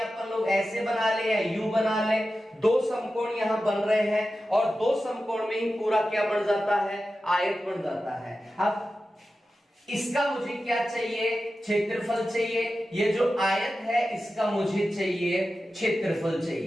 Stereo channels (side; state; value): both; normal; correlation 0.93